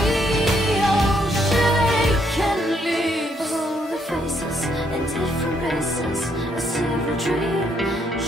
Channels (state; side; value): normal; both; correlation 0.73